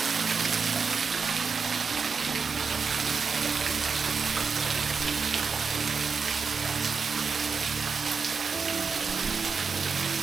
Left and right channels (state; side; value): quieter; left; 5.3 dB